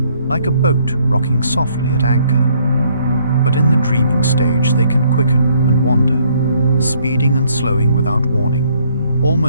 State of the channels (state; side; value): inverted; both; correlation -0.67